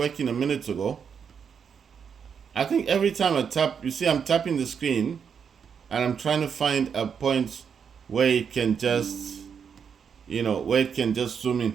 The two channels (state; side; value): quieter; left; 6.9 dB